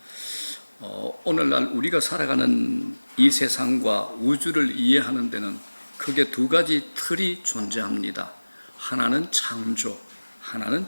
오늘날 우리가 살아가는 이 세상과 우주를 이해하는 데는 크게 두 가지 틀이 존재합니다. 하나는 창조, 하나는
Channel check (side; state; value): both; inverted; correlation -1.00